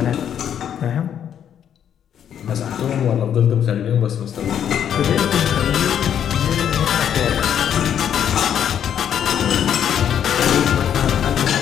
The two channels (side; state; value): right; quieter; 9.2 dB